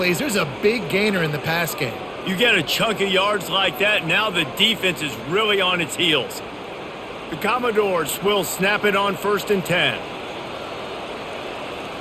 There's a big gainer in the pass game. You get a chunk of yards like that, now the defense is really on its heels. The Commodores will snap it on 1st and 10.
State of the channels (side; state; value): both; identical; correlation 1.00